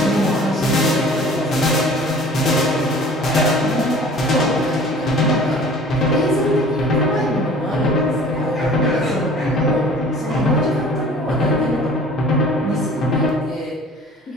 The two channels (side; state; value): both; normal; correlation 0.47